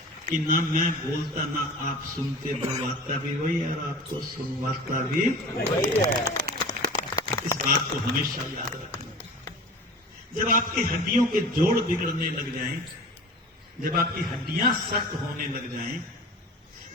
कि ना मैं बोलता ना आप सुनते, बोलवाता भी वही और आपको सुनवाता भी वही है। इस बात को हमेशा याद रखना। जब आपकी हड्डियों के जोड़ बिगड़ने लग जाएं, जब आपकी हड्डियां सख्त होने लग जाएं,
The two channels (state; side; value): normal; both; correlation 0.38